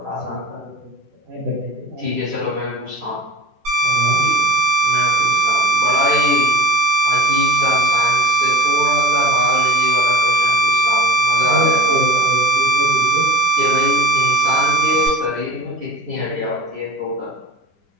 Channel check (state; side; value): late; left; 10 ms